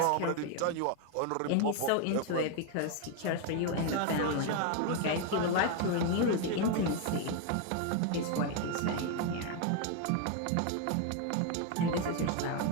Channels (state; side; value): different; both; correlation 0.01